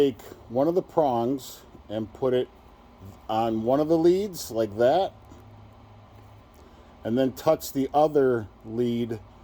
one of the prongs and put it on one of the leads like that, and then touch the other lead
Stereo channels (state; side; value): identical; both; correlation 1.00